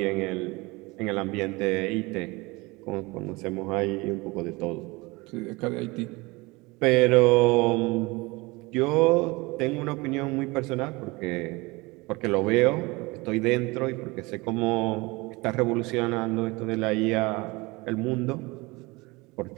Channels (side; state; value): left; quieter; 24.1 dB